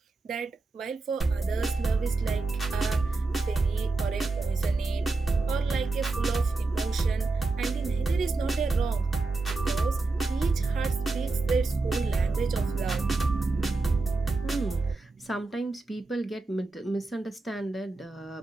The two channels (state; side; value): quieter; left; 3.6 dB